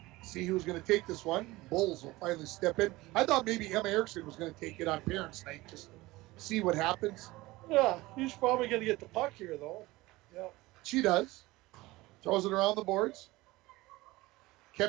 See who's going to take this one. Bulls will finally step in. I thought maybe Emma Erickson was going to take it on Parents' Night just to see what happens. Yeah, he's probably going to get the puck here, though. Yeah. She does. Throws it around the boards.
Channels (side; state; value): left; quieter; 19.9 dB